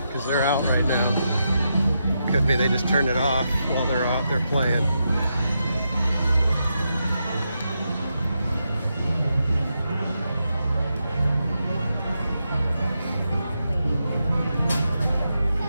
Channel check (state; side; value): inverted; both; correlation -0.85